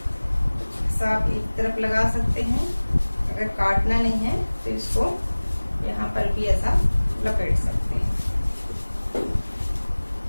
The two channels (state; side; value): inverted; both; correlation -1.00